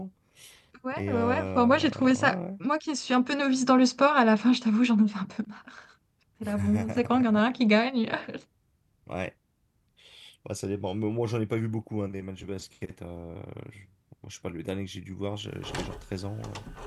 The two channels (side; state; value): both; identical; correlation 1.00